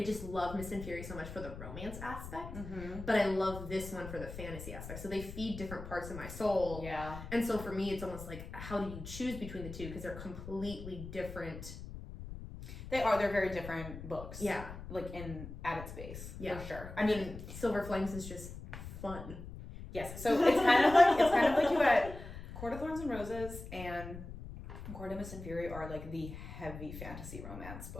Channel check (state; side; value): noise; left; rumble, 11 dB below the sound